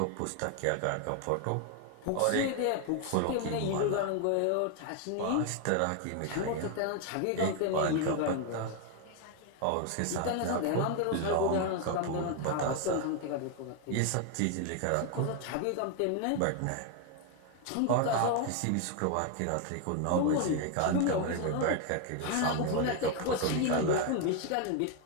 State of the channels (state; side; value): different; both; correlation 0.01